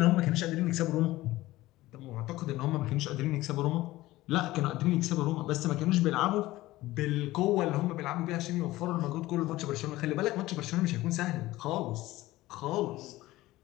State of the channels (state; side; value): quieter; right; 17.5 dB